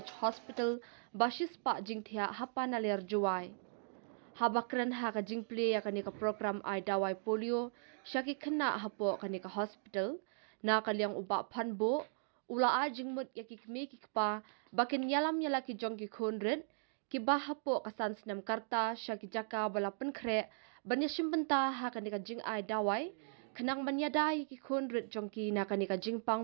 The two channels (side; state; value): left; silent; digital silence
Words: Hospital basis pak jingthia hapa nalir juai habakran ha ka jingple ya ka ni ka program ai dawai polio syaki kena hapo ka ni ka hospital na kaliang uba Panbo ula a jingmut ya ki kmie ki pa bakin yalam yala ki jong ki khonret ki bahapo kasan senam karta syaki jaka bala penkre banya shimbenta ha kanika jing ai dawai kenang manyadai ki khonret jongki na kanika